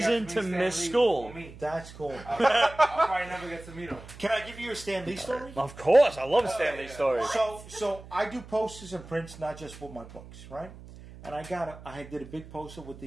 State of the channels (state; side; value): noise; right; hum, 17 dB below the sound